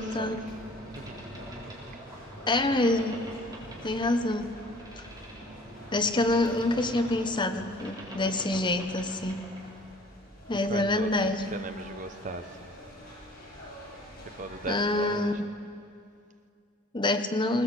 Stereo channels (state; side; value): normal; both; correlation 0.51